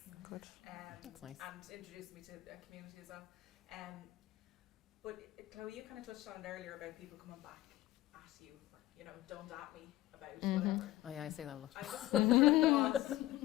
Good. That's nice. And introduced me to a community as well. But Chloe, you kind of touched on it earlier about people coming back at you, or, you know, don't at me about whatever. Oh yeah, I say that a lot. I just wondered what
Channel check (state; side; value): quieter; right; 15.8 dB